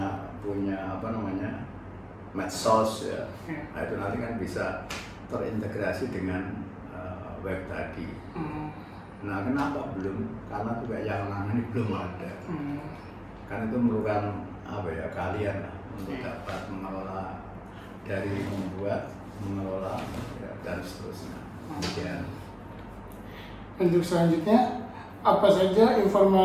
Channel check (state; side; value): identical; both; correlation 1.00